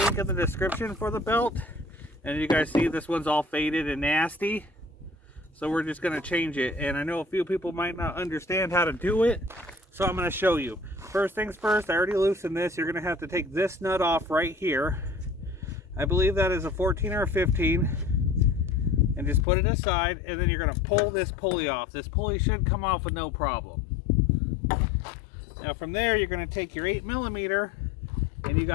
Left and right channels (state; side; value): drops out; right; at 19.5 s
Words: in the description for the belt. And you guys see this one's all faded and nasty. So we're just going to change it. And I know a few people might not understand how to do it. So I'm going to show you. First things first, I already loosened this. You're going to have to take this nut off right here. I believe that is a 14 or a 15. And just put it aside. And then you're going to pull this pulley off. This pulley should come off with no problem. Now from there, you're going to take your 8mm. And you